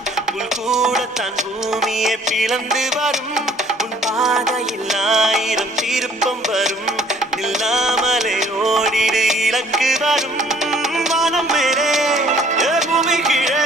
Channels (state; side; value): normal; both; correlation 0.58